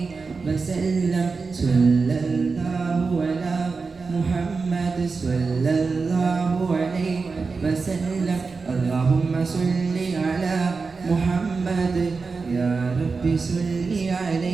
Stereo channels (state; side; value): quieter; left; 4.5 dB